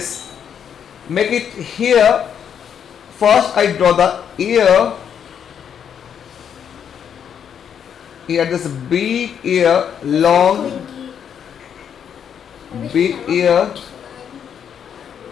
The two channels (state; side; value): quieter; right; 8.2 dB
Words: make it here. First I draw the ear. Here this big ear, long big ear.